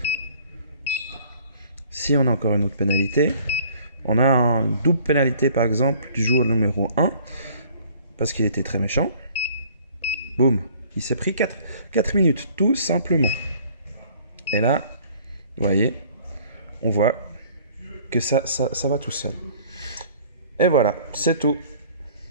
Si on a encore une autre pénalité, on a une double pénalité par exemple du joueur numéro 1 parce qu'il était très méchant. Boum, il s'est pris 4 minutes tout simplement. Et là, vous voyez, on voit que ça va tout seul. Et voilà, c'est tout.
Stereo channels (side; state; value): both; inverted; correlation -0.54